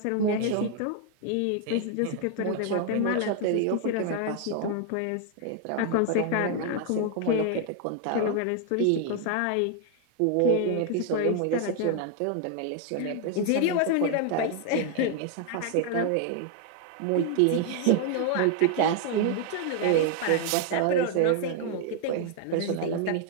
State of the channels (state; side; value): different; both; correlation 0.00